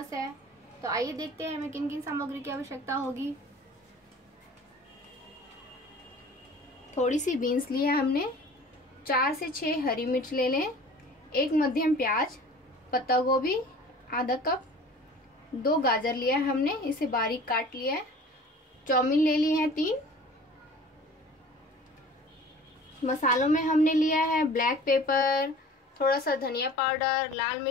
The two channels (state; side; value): normal; both; correlation 0.44